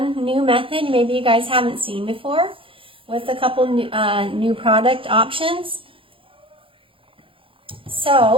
new method maybe you guys haven't seen before, with a couple new product options.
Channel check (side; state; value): left; late; 0.26 ms